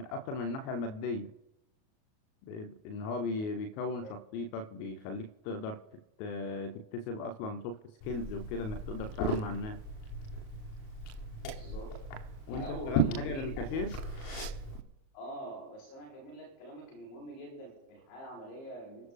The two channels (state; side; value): late; right; 37 ms